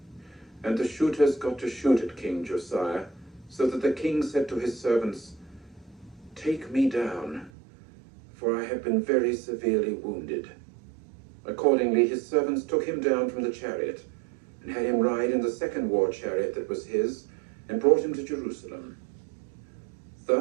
And the shooters got to shoot at King Josiah, so that the king said to his servants, "Take me down, for I have been very severely wounded." Accordingly his servants took him down from the chariot, and had him ride in the second war chariot that was his, and brought him to Jerusalem.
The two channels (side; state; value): left; drops out; at 7.5 s